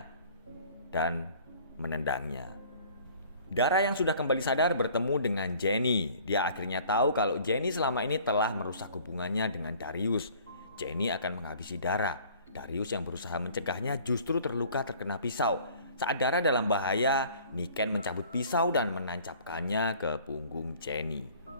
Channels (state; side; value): inverted; both; correlation -0.51